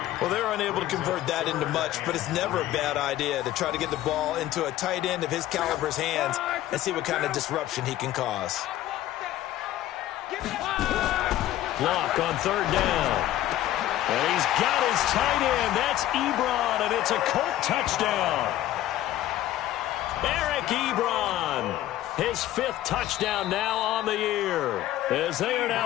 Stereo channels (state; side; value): quieter; right; 13.8 dB